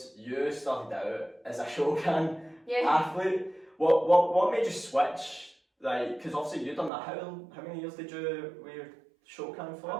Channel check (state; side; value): drops out; left; at 6.9 s